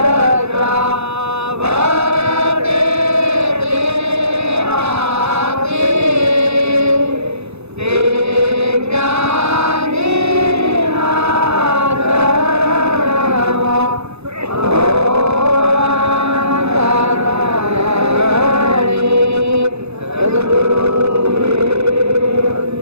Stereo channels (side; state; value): left; late; 0.80 ms